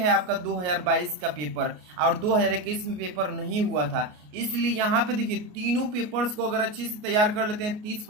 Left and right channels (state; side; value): late; left; 33 ms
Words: आपका 2022 का पेपर, और 2021 में पेपर नहीं हुआ था। इसलिए यहाँ पे देखिए, तीनों पेपर्स को अगर अच्छे से तैयार कर लेते हैं